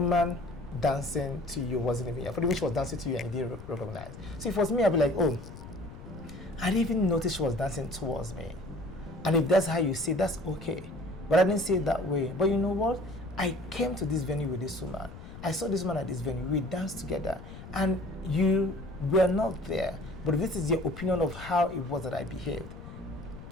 dancing to you wasn't even. For the way she was dancing to you and you didn't recognize. So if it was me, I'd be like, oh, I didn't even notice she was dancing towards me. And if that's how you see it, that's okay. But I didn't see it that way. But you know what? I came to this venue with this woman. I saw this woman at this venue. We danced together. And you were not there. But if this is your opinion of how it was that I behaved,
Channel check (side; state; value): left; noise; rumble, 14 dB below the sound